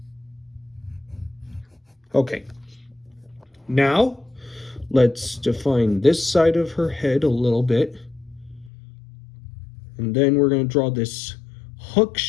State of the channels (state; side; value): drops out; right; at 8.7 s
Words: Okay, now let's define this side of her head a little bit. And then we're going to draw this hook